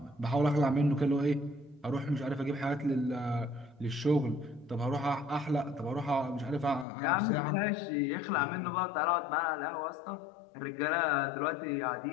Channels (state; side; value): drops out; right; at 6.9 s